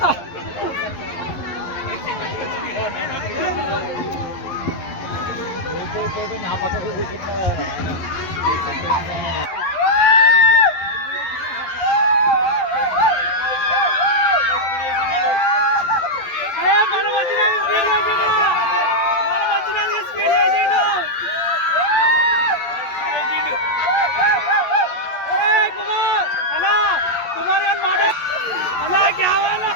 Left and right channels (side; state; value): right; late; 11 ms